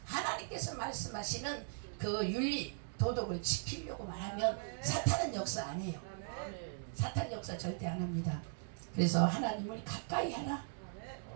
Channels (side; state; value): left; silent; digital silence